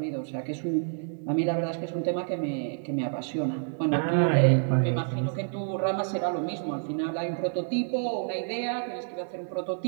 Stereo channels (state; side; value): silent; left; 59 dB below the other